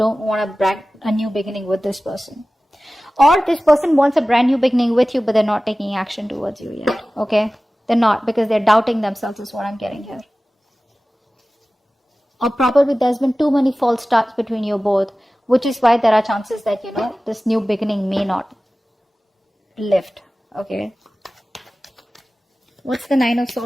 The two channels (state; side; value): normal; both; correlation 0.97